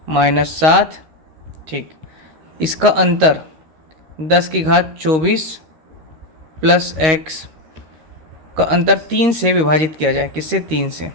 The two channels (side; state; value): left; late; 13 ms